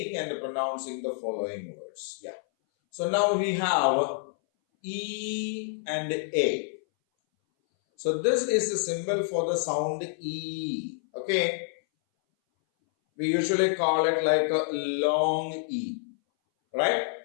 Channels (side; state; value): right; silent; 59 dB below the other